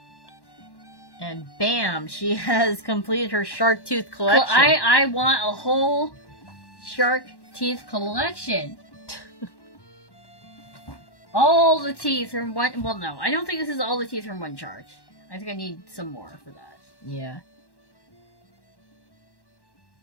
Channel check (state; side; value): late; right; 1.1 ms